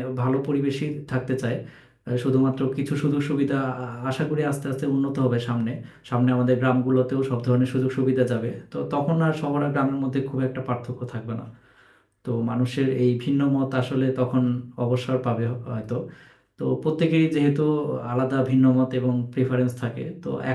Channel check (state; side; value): identical; both; correlation 1.00